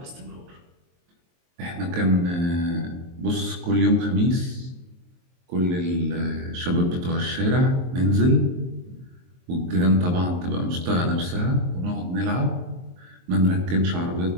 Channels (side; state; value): left; late; 23 ms